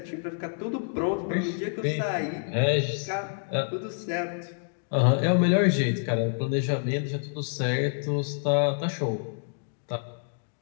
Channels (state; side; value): silent; right; digital silence